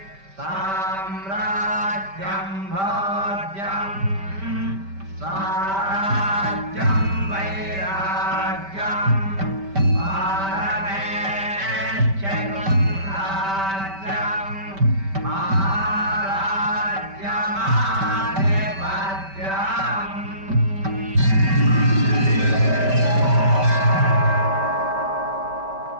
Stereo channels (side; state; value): left; late; 5.1 ms